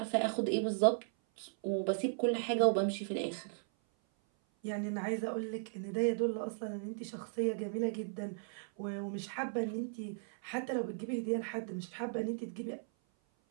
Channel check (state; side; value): silent; left; 53 dB below the other